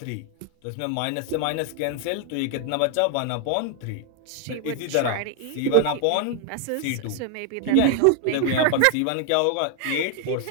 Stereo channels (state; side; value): different; both; correlation 0.00